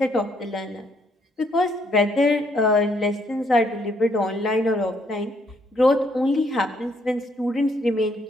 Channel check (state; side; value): normal; both; correlation 0.70